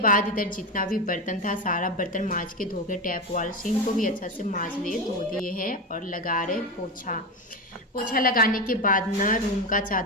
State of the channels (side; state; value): both; normal; correlation 0.16